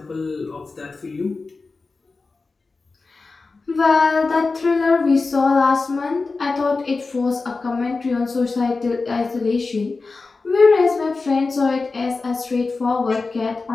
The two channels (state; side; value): quieter; right; 3.9 dB